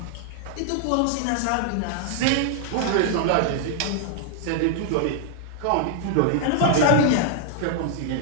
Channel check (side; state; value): both; different; correlation 0.00